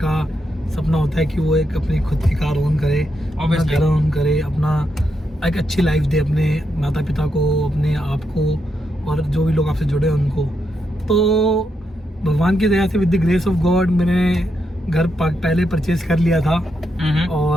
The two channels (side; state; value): both; normal; correlation 0.82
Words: का सपना होता है कि वो एक अपनी खुद की कार ओन करे, अपना घर ओन करे, अपना एक अच्छी लाइफ दे अपने माता पिता को, अपने आप को और जो भी लोग आपसे जुड़े हैं उनको। तो भगवान की दया से with the grace of God मैंने घर पहले परचेज कर लिया था